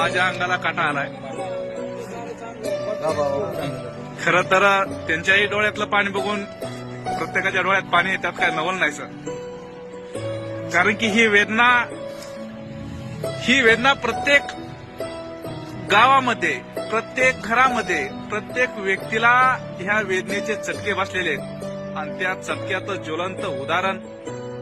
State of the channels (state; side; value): identical; both; correlation 1.00